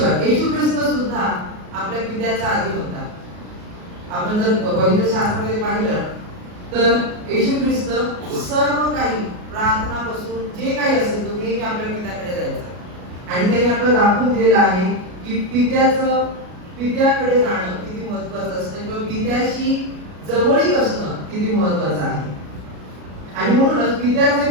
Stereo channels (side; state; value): left; late; 33 ms